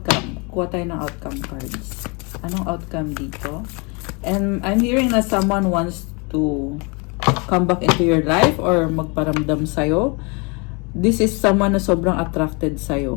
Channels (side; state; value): right; quieter; 30.5 dB